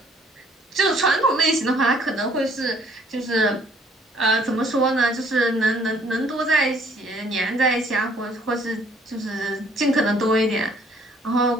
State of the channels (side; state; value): both; normal; correlation 0.61